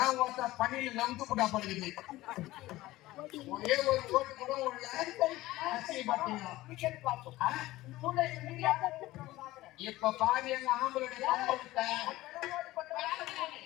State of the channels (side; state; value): right; quieter; 17.5 dB